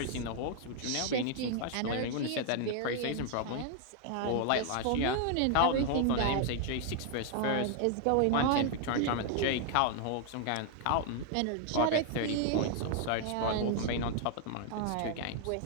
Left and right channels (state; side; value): different; both; correlation 0.00